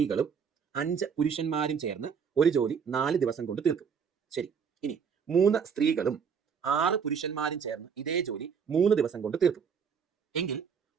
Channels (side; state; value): left; quieter; 6.6 dB